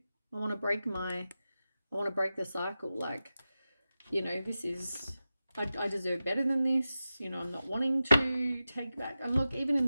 want to break the cycle. Like, you know, this is, I deserve better than this. You know, I'm not wanting to take back. And look, even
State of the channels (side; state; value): both; inverted; correlation -0.93